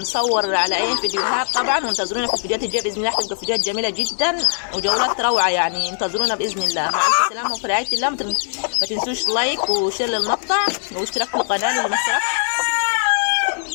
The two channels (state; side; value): silent; right; digital silence